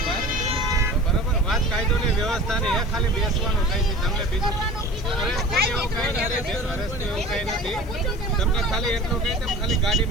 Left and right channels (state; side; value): noise; left; hiss, 25 dB below the sound